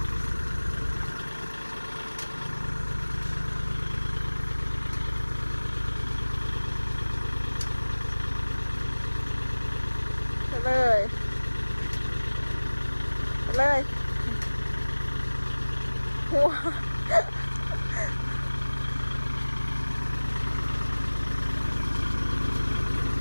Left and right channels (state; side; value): inverted; both; correlation -1.00